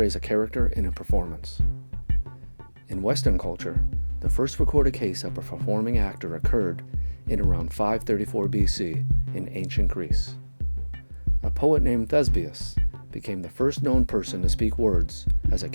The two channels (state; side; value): inverted; both; correlation -1.00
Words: a character in a performance. In Western culture, the first recorded case of a performing actor occurred in around 534 BC in ancient Greece. A poet named Thespius became the first known person to speak words as a